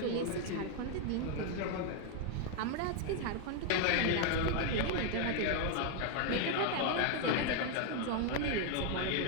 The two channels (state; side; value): different; both; correlation 0.01